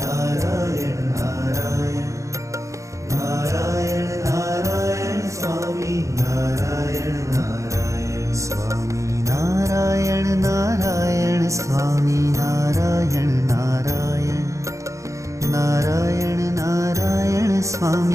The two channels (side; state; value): left; late; 0.15 ms